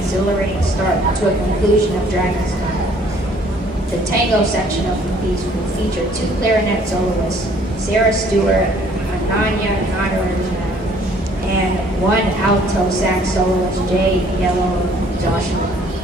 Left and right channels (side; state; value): both; normal; correlation 0.59